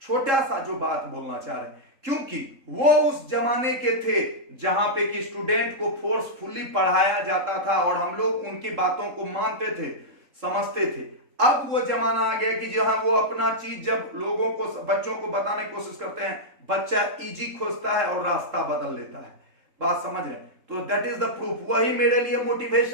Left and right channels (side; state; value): left; late; 3.7 ms